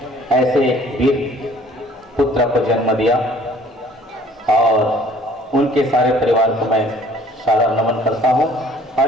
ऐसे वीर पुत्र को जन्म दिया, और उनके सारे परिवार को मैं सादर नमन करता हूँ और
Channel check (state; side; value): normal; both; correlation 0.54